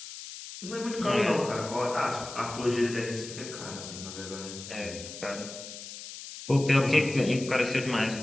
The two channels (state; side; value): noise; left; hiss, 12 dB below the sound